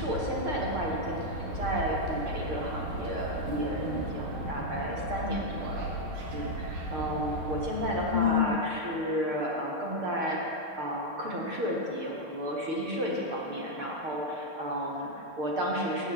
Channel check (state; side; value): late; left; 6.6 ms